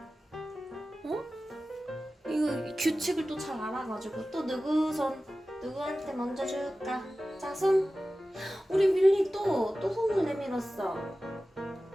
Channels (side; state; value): both; normal; correlation 0.95